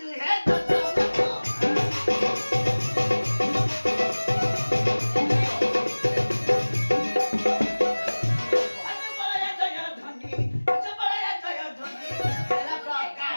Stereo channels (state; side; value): inverted; both; correlation -1.00